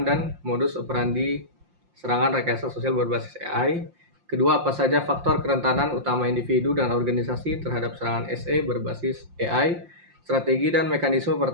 dan modus operandi serangan rekayasa sosial berbasis AI. Kedua, apa saja faktor kerentanan utama individu dan organisasi terhadap serangan SE berbasis AI. Strategi dan mekanisme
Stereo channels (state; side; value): late; left; 5.7 ms